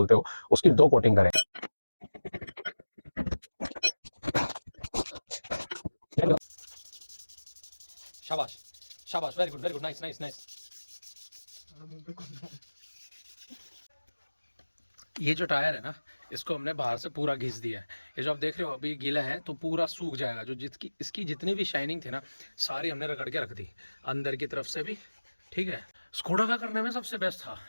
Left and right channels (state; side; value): inverted; both; correlation -1.00